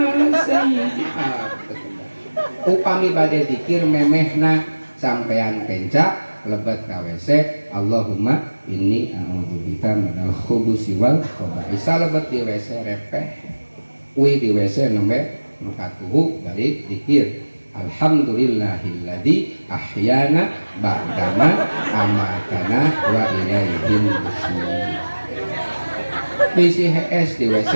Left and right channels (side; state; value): both; inverted; correlation -1.00